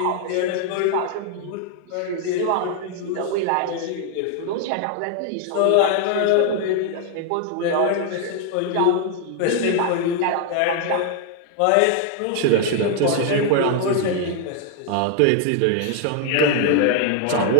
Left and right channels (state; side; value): different; both; correlation 0.00